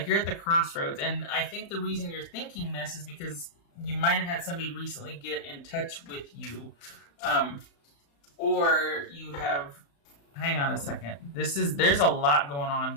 you're at the crossroads, and I think the reason you're thinking this is because you might have had somebody recently get in touch with you, or you have. Hang on a second. There's a lot going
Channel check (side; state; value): right; late; 35 ms